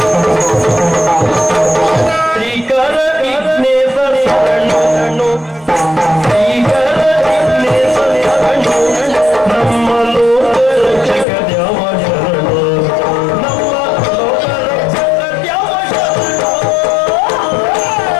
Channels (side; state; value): right; drops out; at 11.2 s